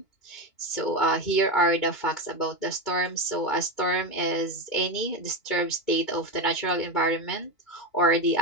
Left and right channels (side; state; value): right; late; 2.1 ms